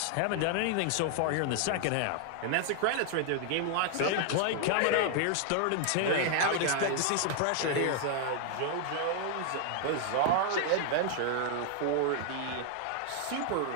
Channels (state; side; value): different; both; correlation 0.00